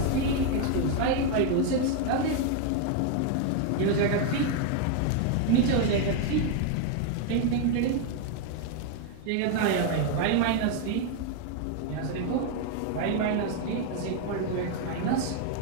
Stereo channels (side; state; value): both; different; correlation 0.00